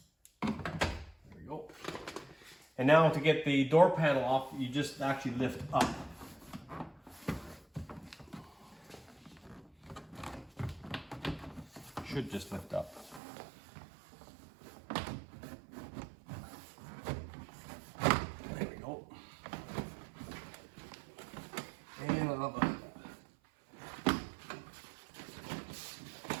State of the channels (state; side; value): drops out; left; at 13.2 s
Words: There we go. And now to get the door panel off, you just actually lift up. Should just lift up. There we go. And another